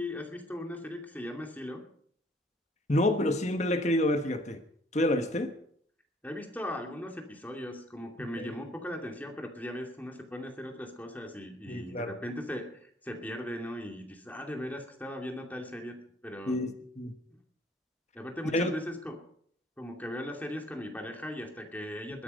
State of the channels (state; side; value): normal; both; correlation 0.60